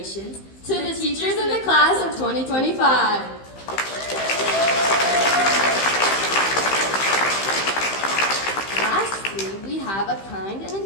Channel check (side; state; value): right; late; 15 ms